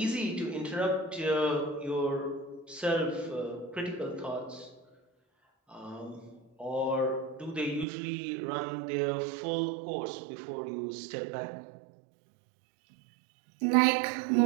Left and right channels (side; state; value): left; drops out; at 7.9 s